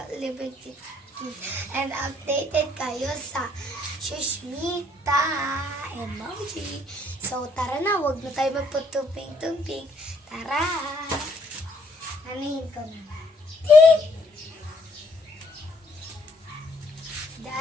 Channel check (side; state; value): both; normal; correlation 0.67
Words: and updated kayo sa Shushmita emoji. So, tara na. Huwag na tayo magputumping-tumping. Tara! Anahin ko na. Tick!